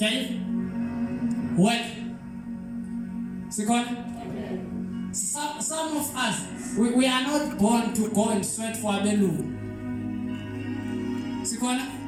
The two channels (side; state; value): both; identical; correlation 1.00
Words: it. Work. Second. Some of us, we are not born to go and sweat for a bellu. Second.